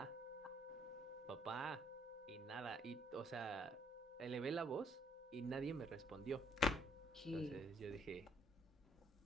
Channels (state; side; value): normal; both; correlation 0.66